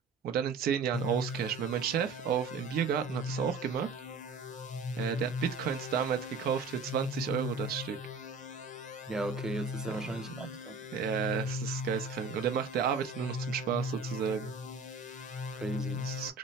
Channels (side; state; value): left; quieter; 4.4 dB